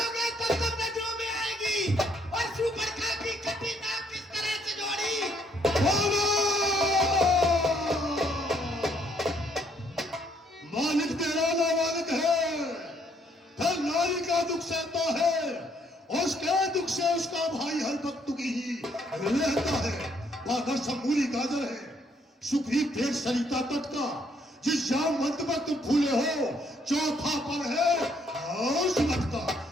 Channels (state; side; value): normal; both; correlation 0.68